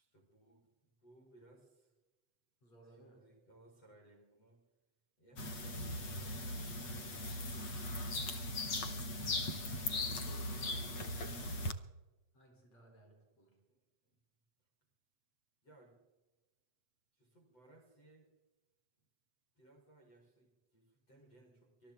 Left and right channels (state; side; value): late; right; 8.0 ms